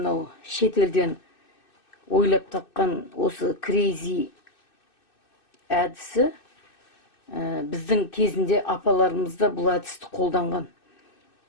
шетелден ойлап тапқан осы крейзи әдісі біздің кезінде апаларымызда бұл әдісті қолданған.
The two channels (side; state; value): right; late; 2.6 ms